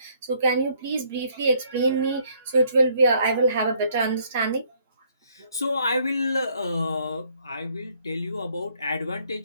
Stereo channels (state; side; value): inverted; both; correlation -0.66